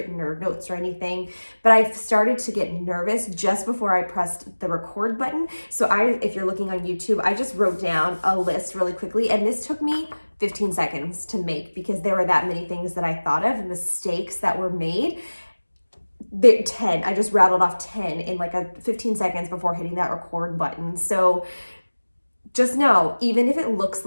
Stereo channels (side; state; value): both; inverted; correlation -1.00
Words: or notes or anything, but I've started to get nervous just before I pressed the record button. So if you're looking on YouTube, I just wrote down a list really quickly, and this took me 15 seconds to make because there were that many things that I thought of, mistakes that were made. 10, I just rattled off 10 in like 15 seconds before hitting that record button. So just know, even if it looks